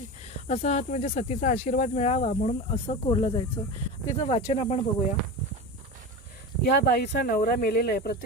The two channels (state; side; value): normal; both; correlation 0.26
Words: असा हात म्हणजे सतीचा आशीर्वाद मिळावा म्हणून असं कोरलं जायचं. तिचं वाचन आपण बघूया. या बाईचा नवरा मेलेला आहे.